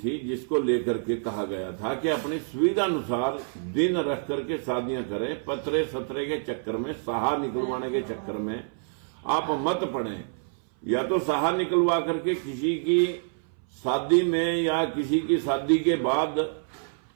जिसको लेकर के कहा गया था कि अपनी सुविधा अनुसार दिन रख करके शादियां करें। पतरे सतरे के चक्कर में, सहा निकलवाने के चक्कर में आप मत पड़ें। या तो सहा निकलवा करके किसी की शादी में या किसी की शादी के बाद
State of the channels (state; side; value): silent; left; 60 dB below the other